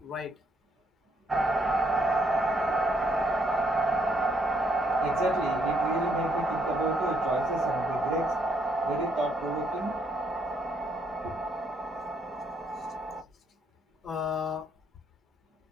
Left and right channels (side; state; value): both; normal; correlation 0.72